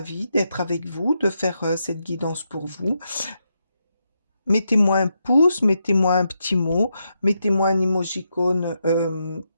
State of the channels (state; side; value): inverted; both; correlation -0.83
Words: d'être avec vous, de faire cette guidance pour vous. Mettez-moi un pouce, mettez-moi un petit mot, mettez-moi un émojicône